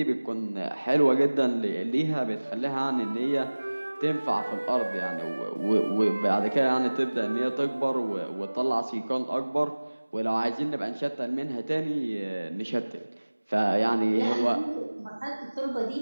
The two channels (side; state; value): both; inverted; correlation -1.00